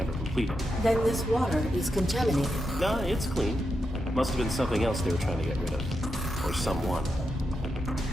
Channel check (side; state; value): both; normal; correlation 0.86